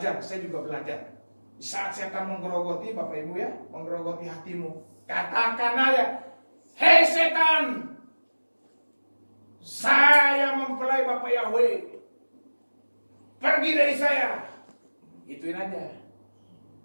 saya juga belajar. Di saat setan menggerogoti, Bapak Ibu ya, menggerogoti hatimu, katakan aja, hei setan, saya mempelai Bapak Yahweh, pergi dari saya. Ituin aja.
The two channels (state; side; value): inverted; both; correlation -1.00